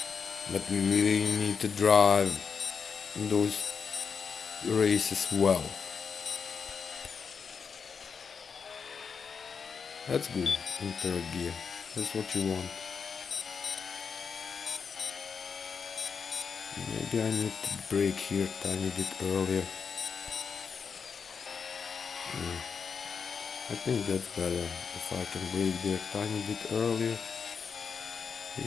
But we really need to drive those races well. That's good in third gear. That's what you want. Maybe I need to brake here a tiny bit earlier. I think that's better. If I can brake there a tiny bit earlier.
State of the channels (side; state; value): right; quieter; 6.0 dB